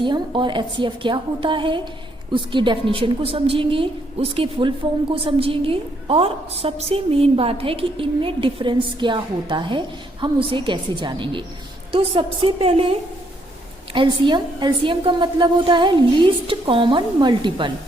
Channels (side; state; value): both; normal; correlation 0.72